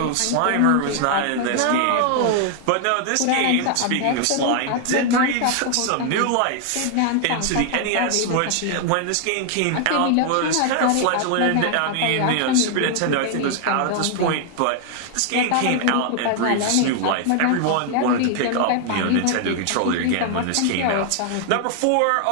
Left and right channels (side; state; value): both; different; correlation 0.00